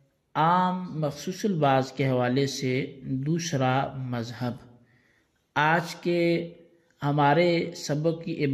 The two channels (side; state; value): both; identical; correlation 1.00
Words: عام مخصوص البعض کے حوالے سے دوسرا مذہب۔ آج کے ہمارے سبق کی